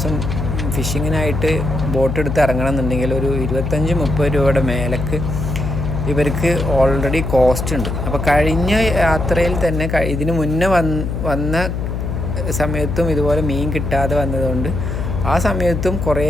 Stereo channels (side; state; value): left; noise; hum, 3 dB below the sound